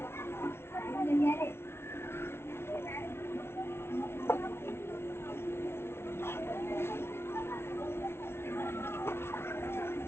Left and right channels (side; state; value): right; late; 0.12 ms